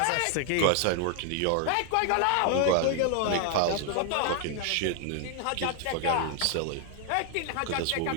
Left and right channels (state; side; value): different; both; correlation 0.00